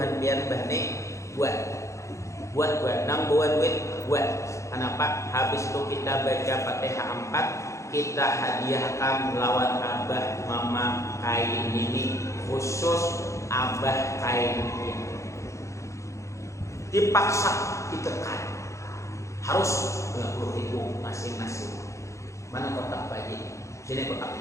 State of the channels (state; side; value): late; right; 0.15 ms